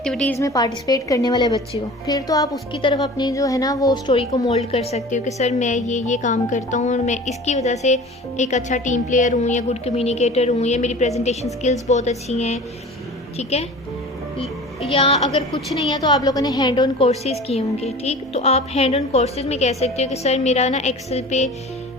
में पार्टिसिपेट करने वाले बच्चे हो, फिर तो आप उसकी तरफ अपनी जो है ना वो स्टोरी को मोल्ड कर सकते हो कि सर मैं ये काम करता हूँ और मैं इसकी वजह से एक अच्छा टीम प्लेयर हूँ या गुड कम्युनिकेटर हूँ या मेरी प्रेजेंटेशन स्किल्स बहुत अच्छी हैं। ठीक है, या अगर कुछ नहीं है तो आप लोगों ने हैंड ऑन कोर्सेज़ किए होंगे। ठीक, तो आप हैंड ऑन कोर्सेज़ में कह सकते हो कि सर मेरा ना एक्सेल पे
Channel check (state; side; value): normal; both; correlation 0.40